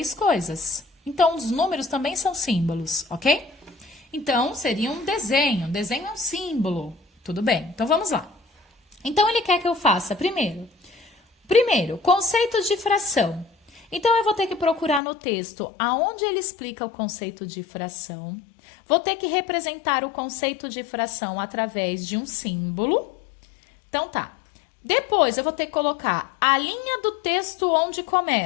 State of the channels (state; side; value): drops out; right; at 15.0 s